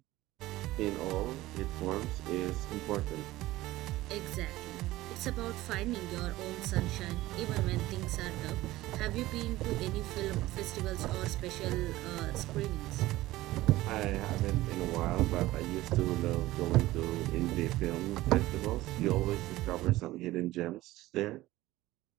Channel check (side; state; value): left; quieter; 17.2 dB